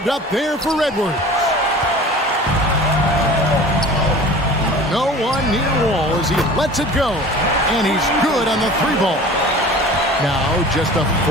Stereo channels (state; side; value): normal; both; correlation 0.41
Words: up there for Edwards. No one near Wall as he lets it go. And he's good on the 3-ball. Now just a